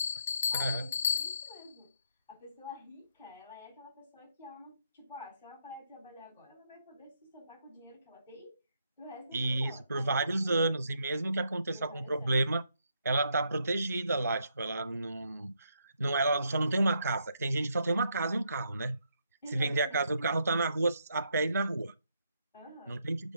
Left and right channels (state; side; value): inverted; both; correlation -0.76